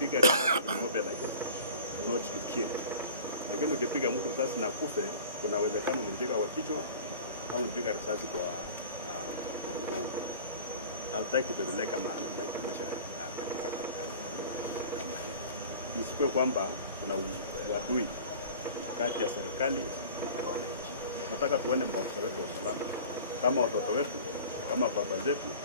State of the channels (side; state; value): both; inverted; correlation -0.41